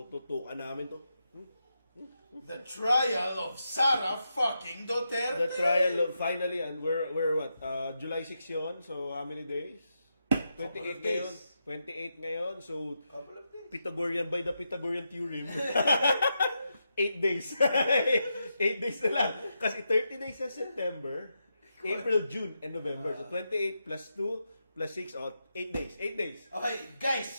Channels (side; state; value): both; inverted; correlation -0.85